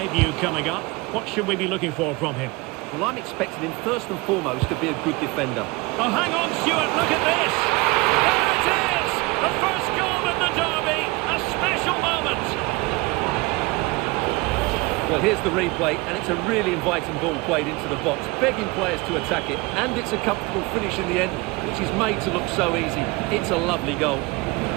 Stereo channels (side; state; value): left; quieter; 24.2 dB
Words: coming up. What should we be looking for from him? Well, I'm expecting him first and foremost to be a good defender. Oh, hang on, Stuart, look at this! There it is! The first goal in the derby! A special moment! Well, here's the replay, and it's a really inviting ball played into the box, begging players to attack it, and it's a comfortable finish in the end, which is made to look so easy. It's a lovely goal.